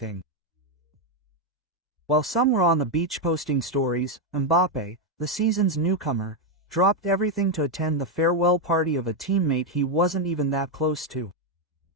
While some were on the beach posting stories, Mbappé, the season's newcomer, dropped everything to attend the farewell party of a teammate he wasn't even that close to.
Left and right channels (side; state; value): both; normal; correlation 0.03